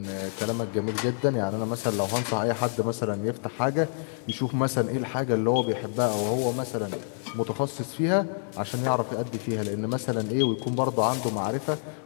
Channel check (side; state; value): right; silent; digital silence